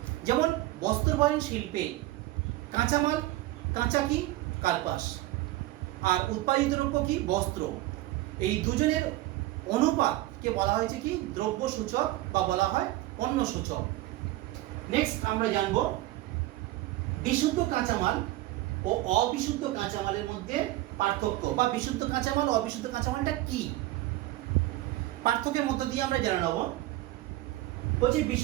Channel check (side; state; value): left; quieter; 16.9 dB